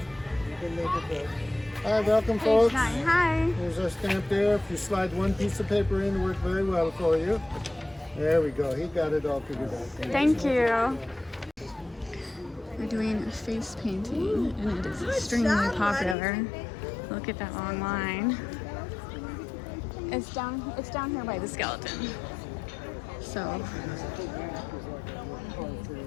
can make it there. Hi, welcome, folks. Hi. There's our stamp there. If you slide one piece of paper in, it worked very well for you. There we go. He got it all figured out. Thank you. We're doing a face painting, and it is extremely popular. Look at that long line. It's down here by the skeleton. So.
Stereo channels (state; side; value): drops out; right; at 16.2 s